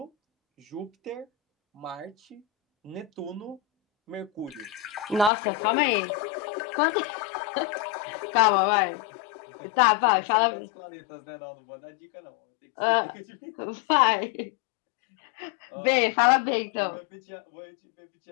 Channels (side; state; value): right; drops out; at 5.3 s